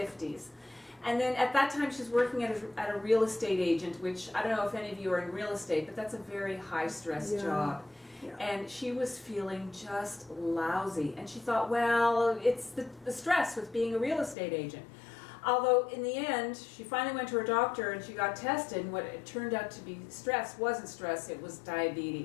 And then at that time she's working at a real estate agent, which I don't know if any of you are in real estate, but that's a very high-stress job. Yeah. And she was feeling just lousy. And she thought, well, it's the stress with being a real estate agent. Although in the end, she finally went to her doctor and she got tested, and what it turned out to be stress wasn't stress, it was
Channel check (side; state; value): right; drops out; at 14.4 s